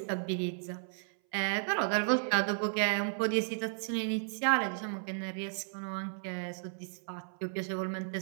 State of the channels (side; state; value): left; silent; 55 dB below the other